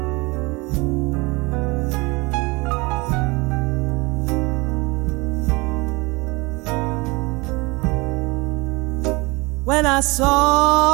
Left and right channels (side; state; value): left; quieter; 25.0 dB